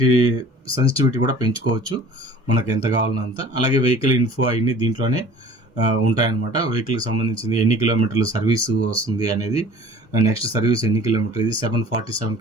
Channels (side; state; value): both; normal; correlation 0.47